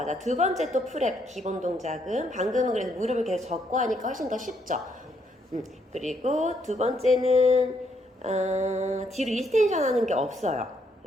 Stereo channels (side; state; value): both; normal; correlation 0.73